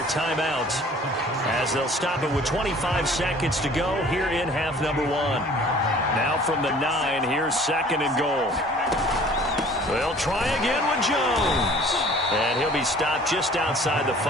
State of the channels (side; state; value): both; normal; correlation 0.51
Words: timeouts, as they'll stop it with 25 seconds to go here in half number 1. Now from the 9, here's 2nd and goal. They'll try again with Jones. And he'll be stopped just outside the